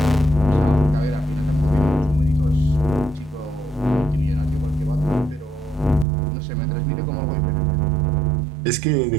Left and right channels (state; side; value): drops out; left; at 6.1 s